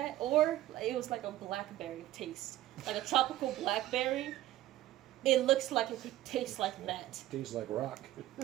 or it was like a blackberry taste, like a tropical blackberry. It looks like it could taste like that. Tastes like rock.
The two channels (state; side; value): quieter; left; 14.6 dB